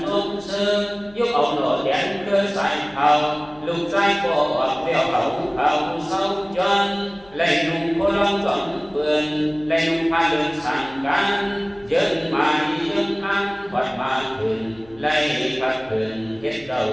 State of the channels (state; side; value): noise; left; hum, 26 dB below the sound